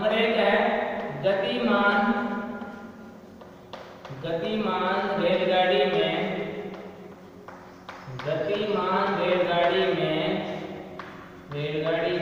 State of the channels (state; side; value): identical; both; correlation 1.00